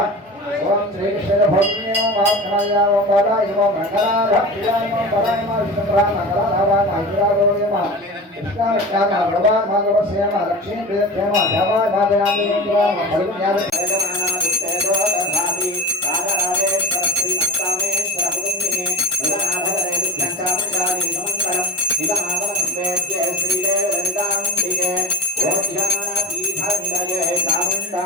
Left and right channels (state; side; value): normal; both; correlation 0.32